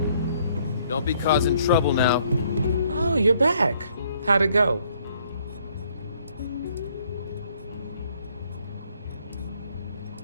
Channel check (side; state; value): both; inverted; correlation -0.65